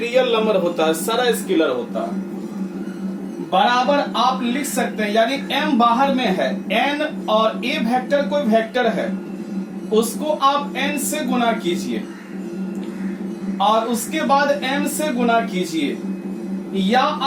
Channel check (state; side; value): identical; both; correlation 1.00